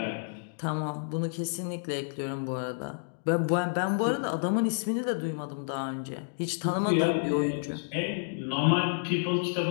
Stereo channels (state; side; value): silent; right; digital silence